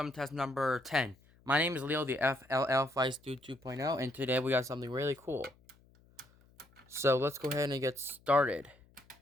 test number 10. My name is Leo, the FLL Flight Dude 2.0, and today we got something really cool. So let's go ahead and get started.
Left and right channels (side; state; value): left; noise; hum, 29 dB below the sound